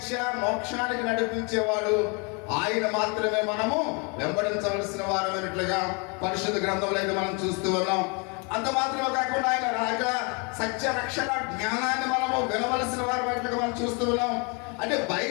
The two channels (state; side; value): quieter; right; 33.3 dB